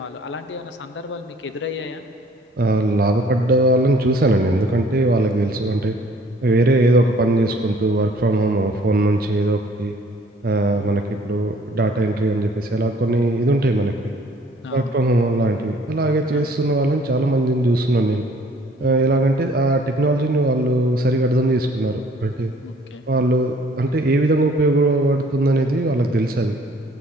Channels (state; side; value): normal; both; correlation 0.57